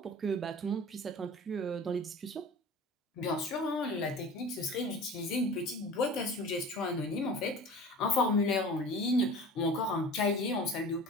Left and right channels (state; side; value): normal; both; correlation 0.39